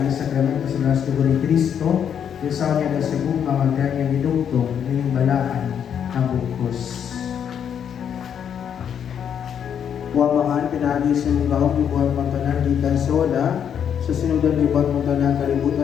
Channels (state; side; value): quieter; right; 8.4 dB